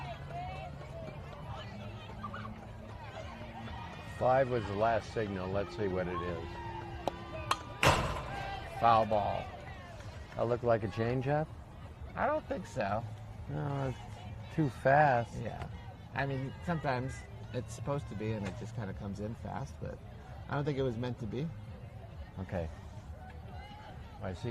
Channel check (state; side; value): identical; both; correlation 1.00